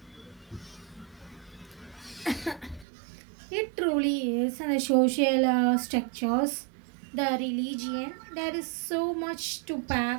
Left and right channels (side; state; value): left; drops out; at 2.9 s